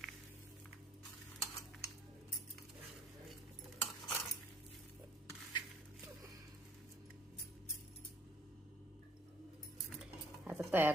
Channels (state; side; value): normal; both; correlation 0.59